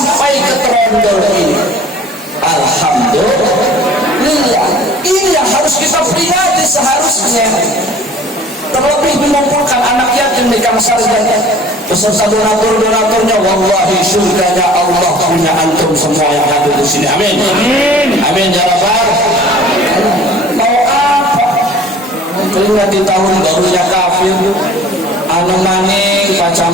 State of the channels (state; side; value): normal; both; correlation 0.48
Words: ke Trondol ini. Alhamdulillah. Ini yang harus kita peringati seharusnya. Terlebih mengumpulkan anak yatim di Kamsar dan beserta donatur-donaturnya. Wallahi surganya Allah punya antum semua yang hadir di sini. Amin. Amin ya rabbal. Mau apa? Keringat di tahun barunya kafir, anu maning